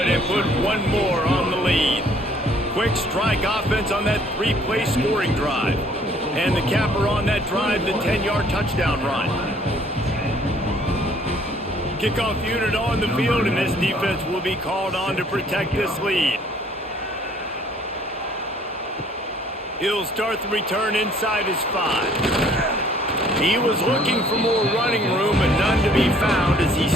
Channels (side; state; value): both; normal; correlation 0.59